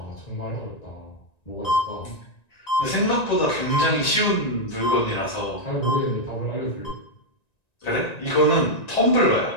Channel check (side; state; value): right; late; 1.9 ms